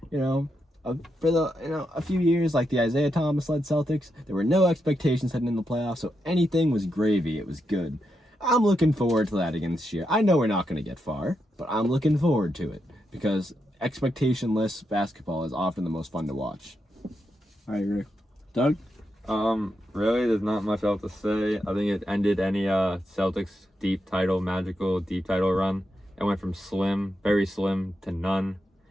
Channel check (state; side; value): normal; both; correlation 0.84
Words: for a few years, like the Isaiah Thomas-led Celtics, there were no expectations heading in the playoffs, so anything was gravy. It was good. I'm looking forward to that again this year. I know we're not going to get far, but I'm looking forward to it because expectationless basketball is often the most fun to watch. I agree. Doug? Really, there's not much else to say. I think it ended any Celtics magical deep title run. It went from slim, very slim, to none.